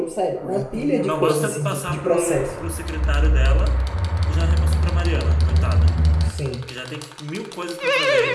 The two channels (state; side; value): identical; both; correlation 1.00